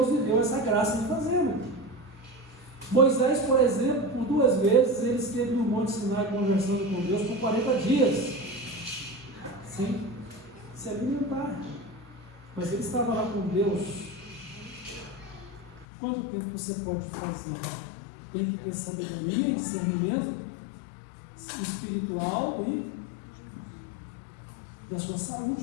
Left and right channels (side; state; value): right; drops out; at 15.9 s